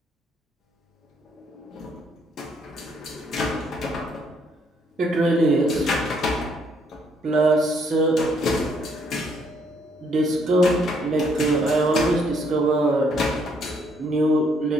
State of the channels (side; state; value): both; normal; correlation 0.69